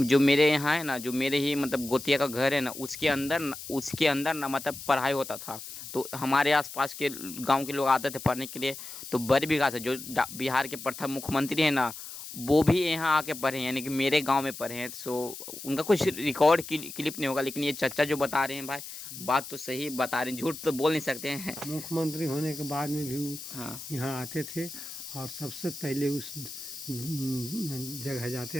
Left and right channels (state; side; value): noise; left; hiss, 11 dB below the sound